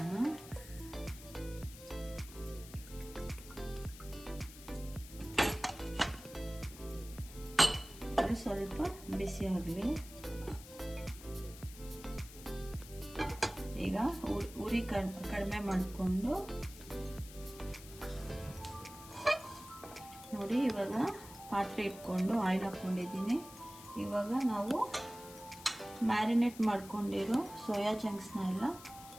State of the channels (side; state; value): left; noise; hiss, 16 dB below the sound